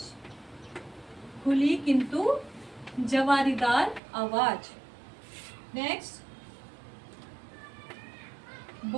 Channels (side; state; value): left; drops out; at 4.0 s